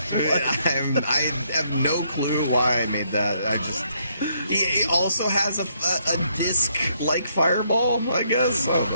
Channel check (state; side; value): inverted; both; correlation -0.72